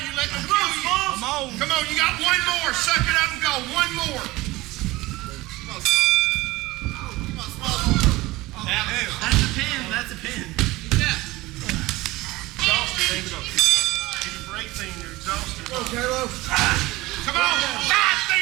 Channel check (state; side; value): quieter; left; 19.8 dB